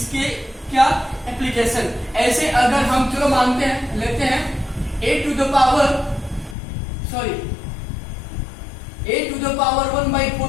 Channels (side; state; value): right; drops out; at 6.6 s